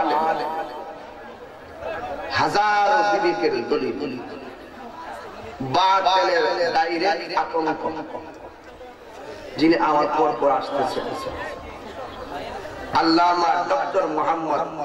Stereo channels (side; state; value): both; identical; correlation 1.00